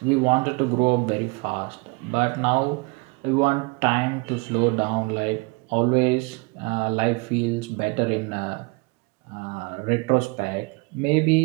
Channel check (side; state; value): left; quieter; 28.6 dB